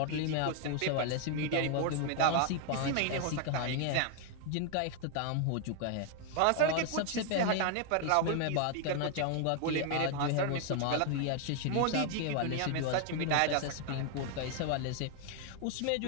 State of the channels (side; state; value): both; different; correlation 0.00